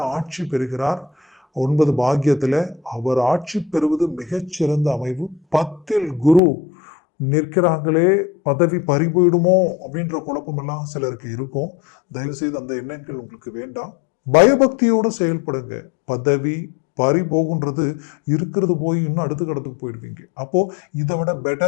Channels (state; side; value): drops out; right; at 6.4 s